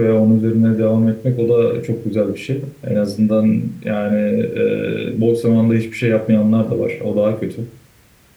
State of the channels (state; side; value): identical; both; correlation 1.00